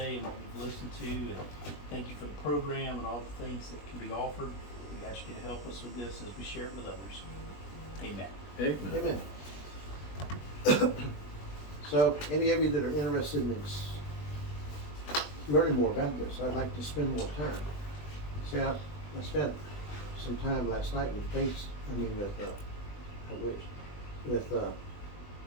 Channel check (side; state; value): right; late; 20 ms